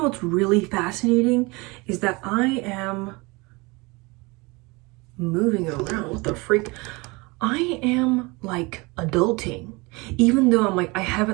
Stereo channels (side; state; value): left; quieter; 25.5 dB